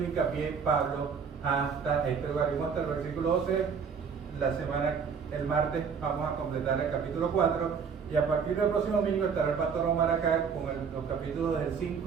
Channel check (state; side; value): quieter; left; 6.2 dB